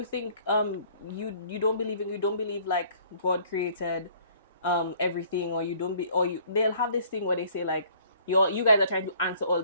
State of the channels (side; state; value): both; inverted; correlation -0.57